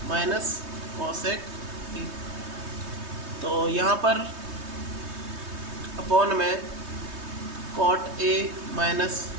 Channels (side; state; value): left; late; 3.2 ms